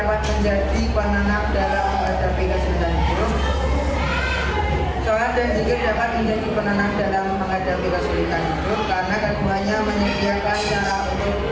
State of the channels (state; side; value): identical; both; correlation 1.00